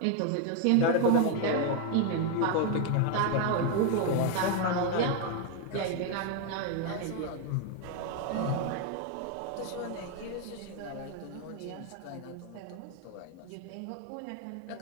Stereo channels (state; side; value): different; both; correlation 0.01